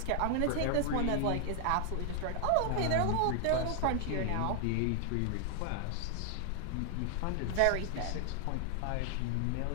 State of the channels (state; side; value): different; both; correlation 0.00